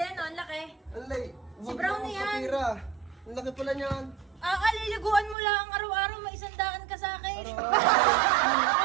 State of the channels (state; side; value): drops out; left; at 5.4 s